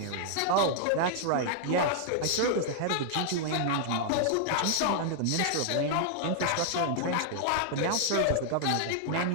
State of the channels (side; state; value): both; different; correlation -0.01